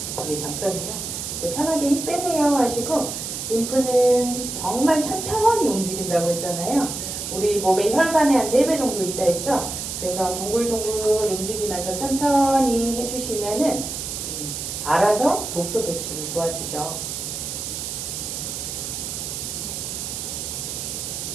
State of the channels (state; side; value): noise; right; hiss, 5 dB below the sound